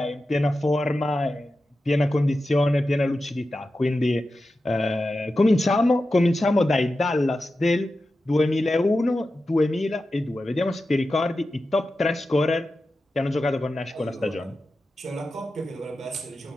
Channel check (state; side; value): normal; both; correlation 0.92